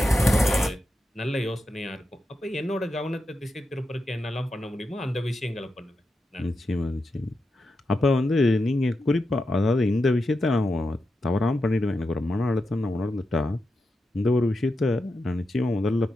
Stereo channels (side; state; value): both; normal; correlation 0.88